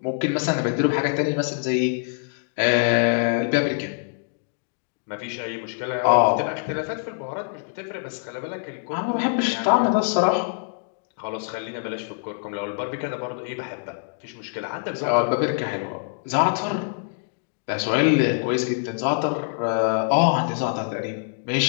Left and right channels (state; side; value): silent; right; digital silence